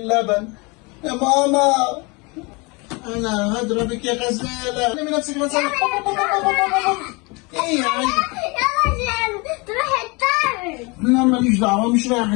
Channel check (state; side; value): quieter; right; 27.9 dB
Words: يا ماما انا هضربك يا غزاله. لمي نفسك غزاله. ايه يا عيني؟ يلا تروح الدرس. لا ماليش دعوه، مش رايح